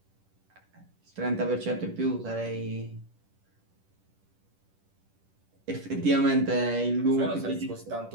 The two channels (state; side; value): late; left; 10 ms